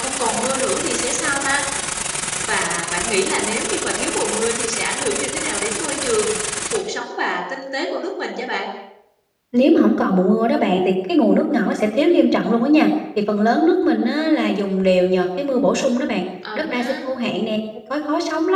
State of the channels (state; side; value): identical; both; correlation 1.00